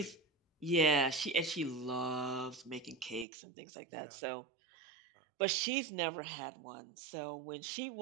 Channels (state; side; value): drops out; left; at 3.2 s